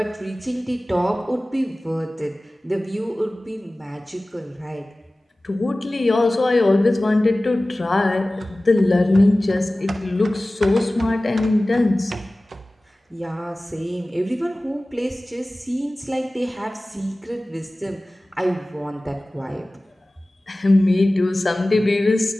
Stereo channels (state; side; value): normal; both; correlation 0.97